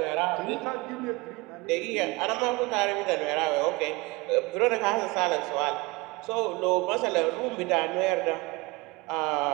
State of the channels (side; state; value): left; quieter; 24.2 dB